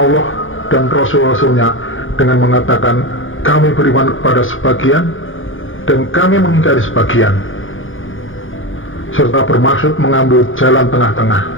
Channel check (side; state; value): right; late; 0.58 ms